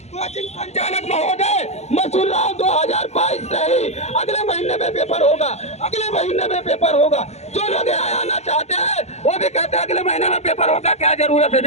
कोचिंग संचालक महोदय मसूर राव 2022 से ही अगले महीने में पेपर होगा, अगले महीने में पेपर होगा। जो लोग यहाँ आना चाहते हैं वो भी कहते हैं अगले महीने में पेपर होगा, क्या जरूरत है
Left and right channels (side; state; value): right; late; 0.32 ms